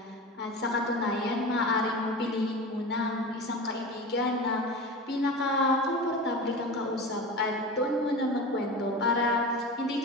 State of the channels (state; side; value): normal; both; correlation 0.30